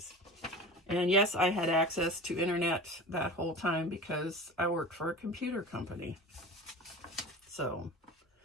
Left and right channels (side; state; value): both; normal; correlation 0.35